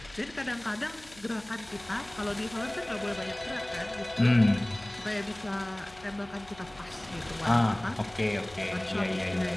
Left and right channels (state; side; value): noise; left; hum, 23 dB below the sound